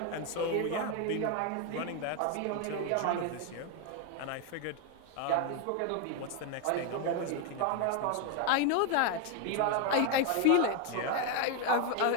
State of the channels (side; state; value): both; different; correlation 0.01